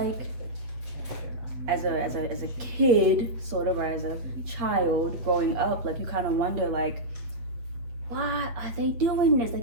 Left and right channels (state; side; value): late; left; 8.1 ms